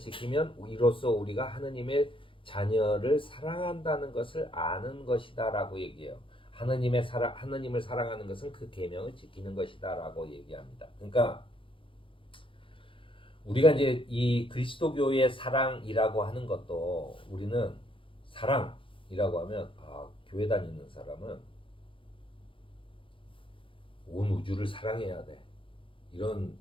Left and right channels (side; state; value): right; late; 0.25 ms